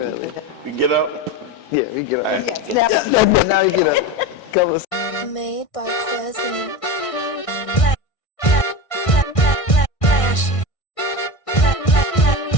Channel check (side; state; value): right; late; 1.6 ms